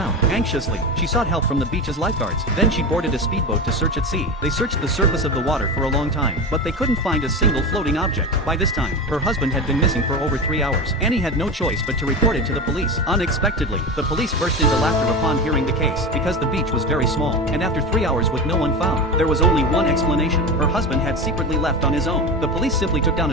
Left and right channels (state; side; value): normal; both; correlation 0.23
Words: Anxiously, she sought help from the beach's lifeguards. Then she boarded a speedboat to search at sea. They searched the surface of the water for a long time, but they couldn't find a single floating object. By this time, her husband had been missing for over 3 hours. Annie had no choice but to report it to the police. Unexpectedly, the police burst into laughter upon hearing the case, because the beach was very small, and after 3 hours with no one found, there was only one explanation. Her husband had secretly left on his own. The police simply took down